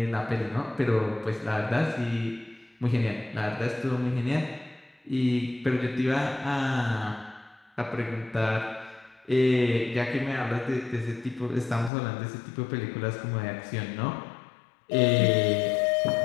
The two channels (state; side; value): drops out; right; at 11.9 s